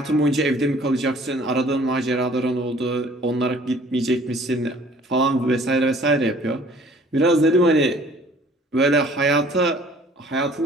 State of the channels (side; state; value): both; normal; correlation 0.54